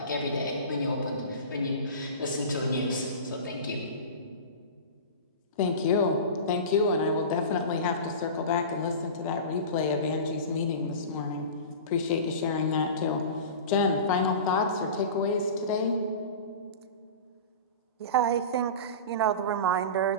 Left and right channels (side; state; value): both; inverted; correlation -0.31